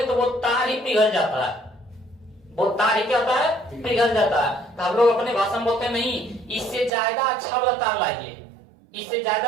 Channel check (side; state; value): left; drops out; at 6.9 s